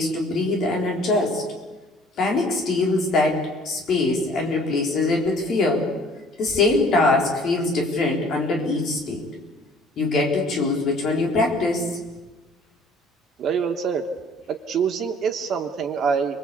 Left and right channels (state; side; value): normal; both; correlation 0.54